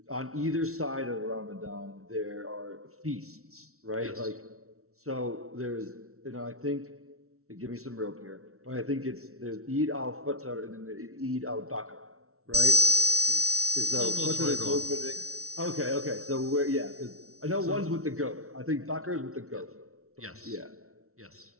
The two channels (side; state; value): left; late; 0.63 ms